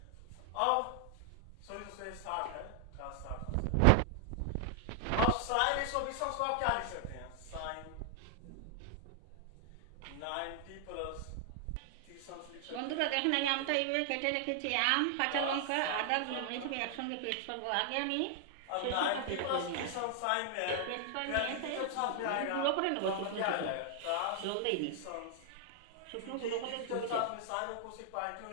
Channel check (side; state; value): both; different; correlation 0.00